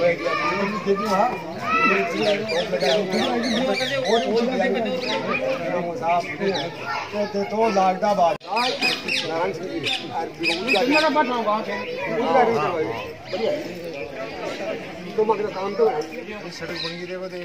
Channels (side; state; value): both; identical; correlation 1.00